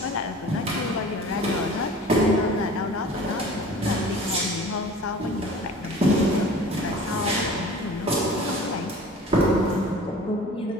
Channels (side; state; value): both; normal; correlation 0.43